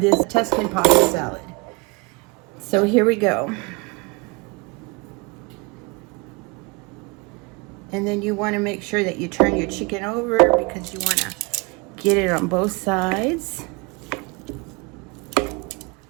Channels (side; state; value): left; quieter; 28.2 dB